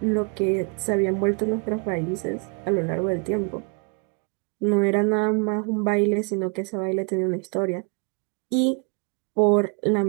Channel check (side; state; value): left; quieter; 33.5 dB